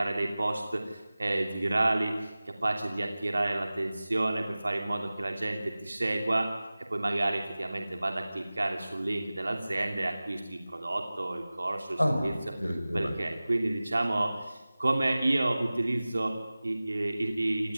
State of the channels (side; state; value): both; inverted; correlation -0.97